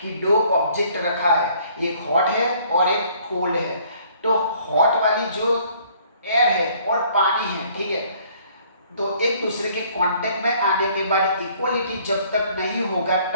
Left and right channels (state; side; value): inverted; both; correlation -0.60